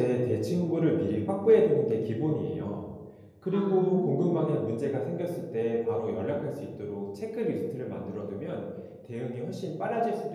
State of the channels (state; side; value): identical; both; correlation 1.00